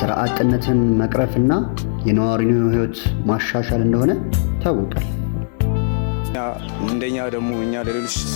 አጥነትን መቅረፍና የነዋሪውን ህይወት ማሻሻል እንደሆነ ታውቋል። እንደኛ ደግሞ እኛ ለሌሎች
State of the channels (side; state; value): right; silent; 67 dB below the other